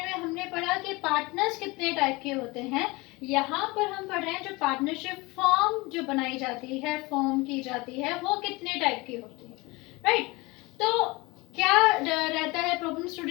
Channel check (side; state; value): right; quieter; 23.8 dB